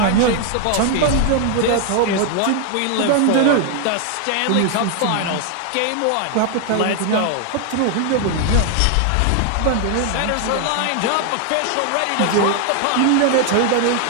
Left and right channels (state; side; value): different; both; correlation 0.00